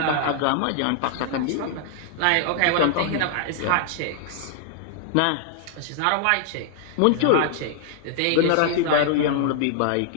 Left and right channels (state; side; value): different; both; correlation 0.00